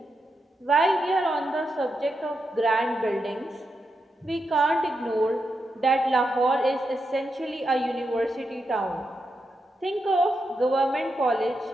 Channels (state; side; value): normal; both; correlation 0.85